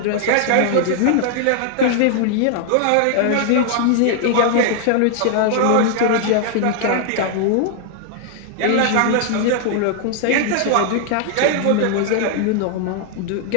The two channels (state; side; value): different; both; correlation 0.00